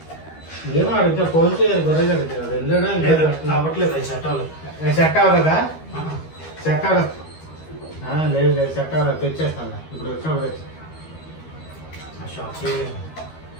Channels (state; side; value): late; right; 13 ms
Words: ఏమో అడిగితే ఫోన్ చేయాలి, గొర్రెగడ్డకి అది వెళ్ళాడా అవ్వట్లేదు. అది సెట్ అవ్వలేదు. సెట్ అవ్వలేదా? సెట్ అవ్వలేదు. లేదు లేదు సెట్ అవ్వలేదు, తెచ్చేస్తాను ఇప్పుడు వచ్చినప్పుడు తెచ్చి